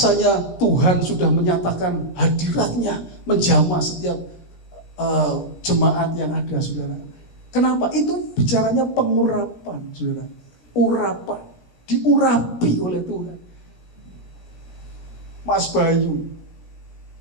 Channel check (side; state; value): right; late; 17 ms